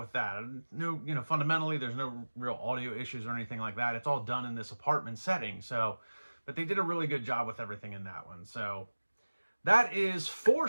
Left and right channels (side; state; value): both; inverted; correlation -1.00